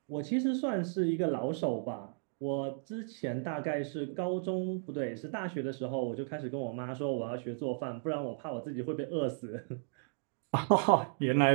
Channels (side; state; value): left; silent; digital silence